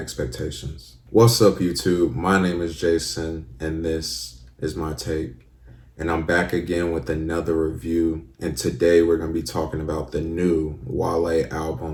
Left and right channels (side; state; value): both; identical; correlation 1.00